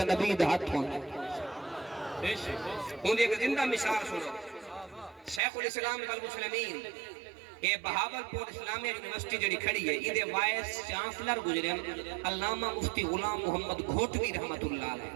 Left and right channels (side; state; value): left; drops out; at 5.4 s